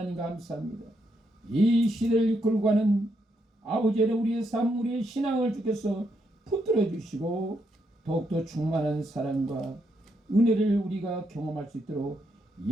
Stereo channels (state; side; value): normal; both; correlation 0.79